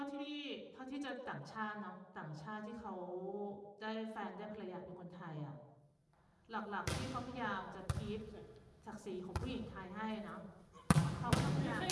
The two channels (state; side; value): identical; both; correlation 1.00